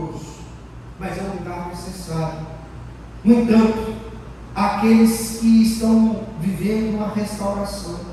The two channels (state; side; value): identical; both; correlation 1.00